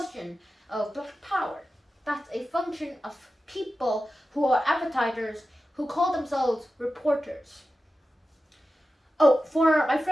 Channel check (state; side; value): normal; both; correlation 0.93